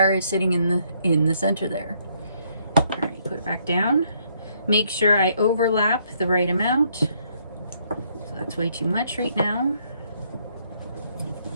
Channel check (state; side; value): inverted; both; correlation -0.69